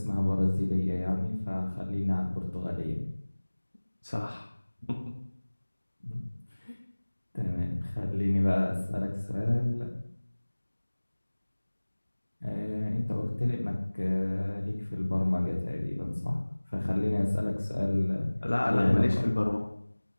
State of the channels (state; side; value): inverted; both; correlation -1.00